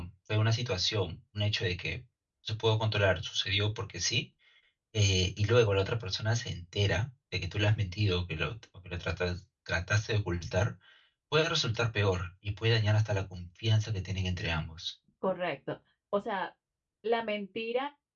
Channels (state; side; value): identical; both; correlation 1.00